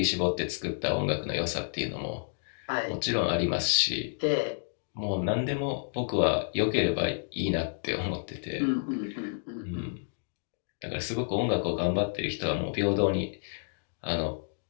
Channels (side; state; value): right; silent; digital silence